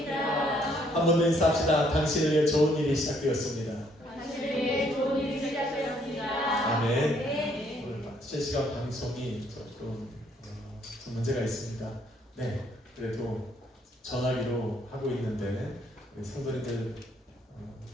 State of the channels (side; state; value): both; normal; correlation 0.68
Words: 한 번 더 인사합시다. 당신을 위해 좋은 일이 시작되었습니다. 아멘. 오늘 실시간 방송이 조금 문제가 있습니다. 네, 그래도 전화기로 하고 있는데 우리 성도님들